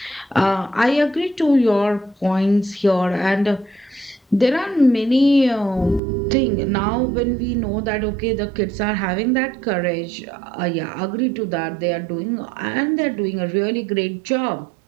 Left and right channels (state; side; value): drops out; left; at 6.0 s